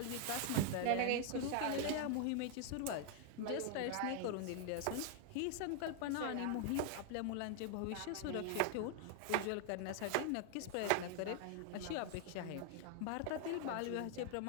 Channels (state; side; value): different; both; correlation 0.00